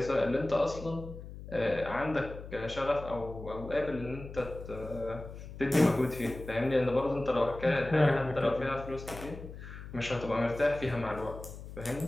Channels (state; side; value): noise; left; hum, 12 dB below the sound